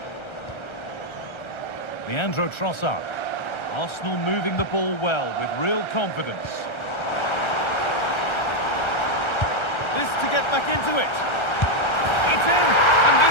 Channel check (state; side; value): late; right; 1.3 ms